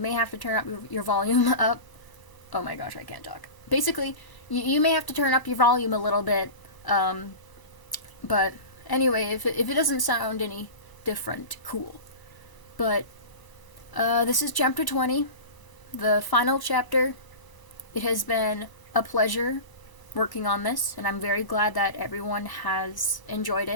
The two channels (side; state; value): right; late; 1.0 ms